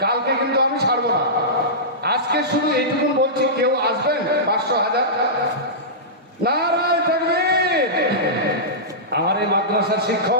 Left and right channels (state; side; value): normal; both; correlation -0.16